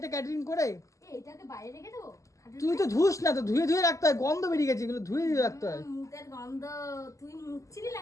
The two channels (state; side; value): late; right; 0.16 ms